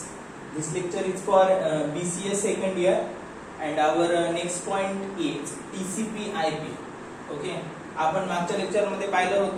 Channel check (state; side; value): identical; both; correlation 1.00